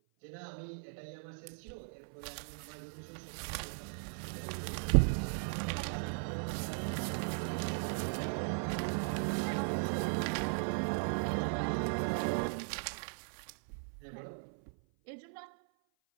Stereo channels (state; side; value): silent; left; 53 dB below the other